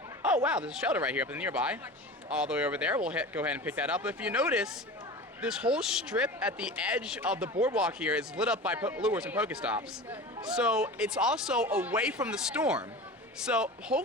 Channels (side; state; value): both; normal; correlation 0.33